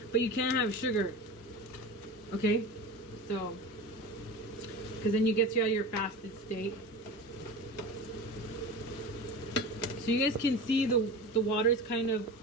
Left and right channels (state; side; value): normal; both; correlation 0.30